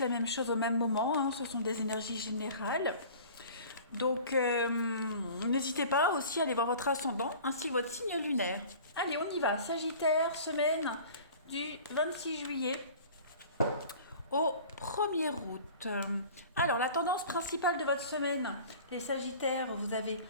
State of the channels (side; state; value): both; inverted; correlation -0.43